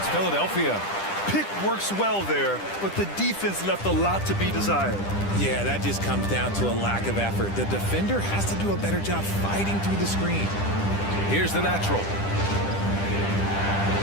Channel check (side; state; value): right; late; 10 ms